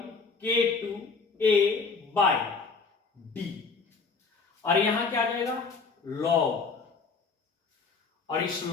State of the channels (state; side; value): quieter; right; 4.7 dB